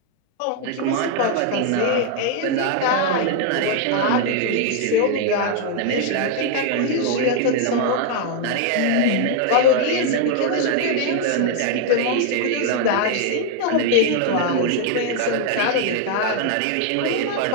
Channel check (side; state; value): both; different; correlation 0.00